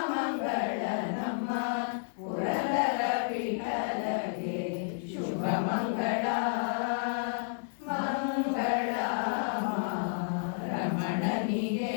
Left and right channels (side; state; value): right; silent; digital silence